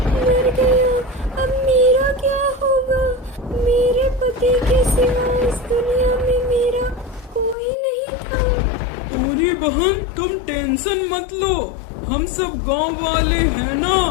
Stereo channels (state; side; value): drops out; right; at 7.6 s